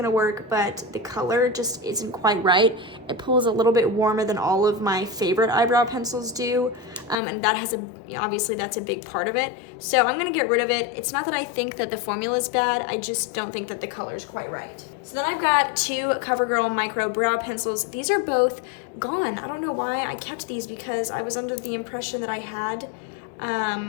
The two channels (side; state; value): right; drops out; at 7.2 s